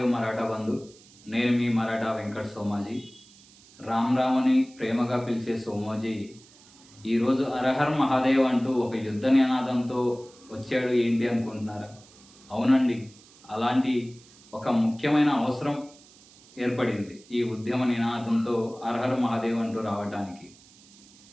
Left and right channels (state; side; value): noise; right; hiss, 25 dB below the sound